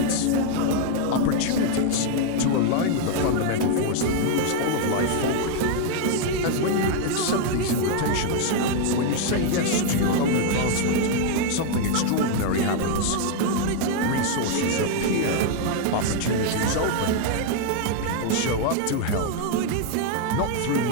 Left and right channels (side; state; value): both; different; correlation 0.00